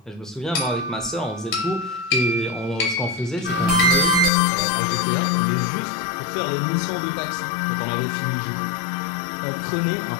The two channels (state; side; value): drops out; right; at 4.3 s